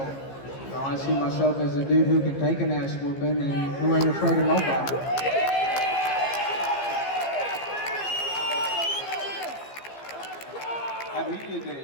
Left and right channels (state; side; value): late; right; 15 ms